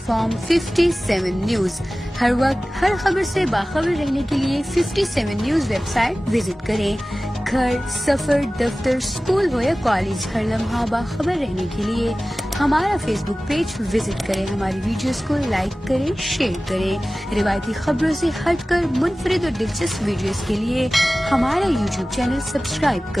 57 न्यूज, हर वक्त हर खबर से बाखबर रहने के लिए 57 न्यूज वेबसाइट विजिट करें। घर, सफर, दफ्तर, स्कूल हो या कॉलेज, हर लम्हा बाखबर रहने के लिए हमारा फेसबुक पेज विजिट करें, हमारी वीडियोस को लाइक करें, शेयर करें। रिवायती खबरों से हटकर मुनफरिद और दिलचस्प वीडियोस के लिए हमारा यूट्यूब चैनल सब्सक्राइब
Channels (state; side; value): normal; both; correlation 0.97